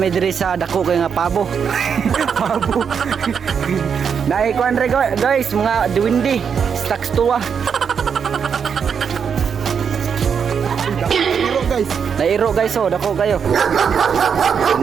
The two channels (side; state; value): left; quieter; 6.9 dB